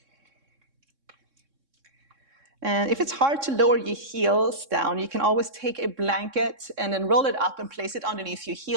And if it's hard to lower your heels down, you can always take a blanket and then roll it up and place it underneath your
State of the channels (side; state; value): left; late; 3.6 ms